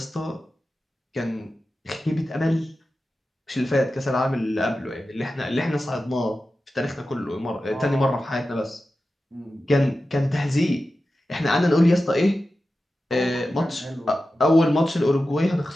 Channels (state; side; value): normal; both; correlation 0.93